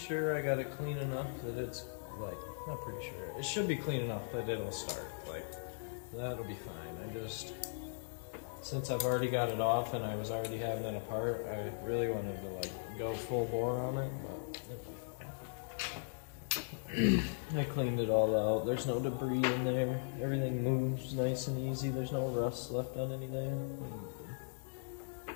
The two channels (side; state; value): right; silent; digital silence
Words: I got it clean enough that it's, like, not pretty sure. It should be clean enough that it'll start. Like, that'll be fine. I just, since I've already got it off and I was already having it apart, I really wanted to, like, go full bore on it, but it'll be fine. I cleaned it all out. There's no debris in there. Everything moves nice and easy. There's no rust left on anything.